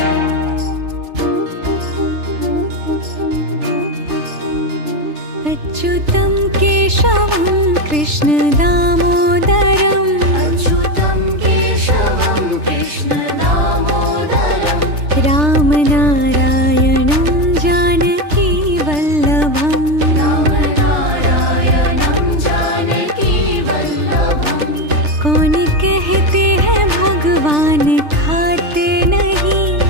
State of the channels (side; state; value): left; late; 3.3 ms